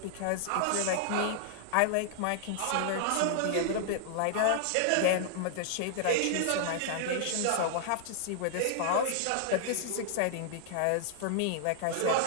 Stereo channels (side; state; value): both; different; correlation -0.01